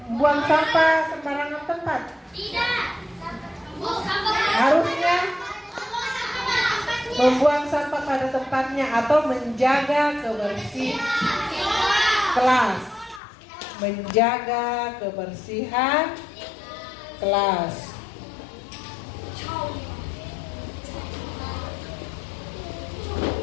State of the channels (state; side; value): drops out; right; at 13.2 s